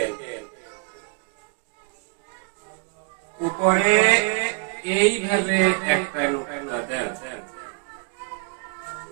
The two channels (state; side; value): quieter; left; 39.1 dB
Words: উপরে এইভাবে একটা নোকতা দেন,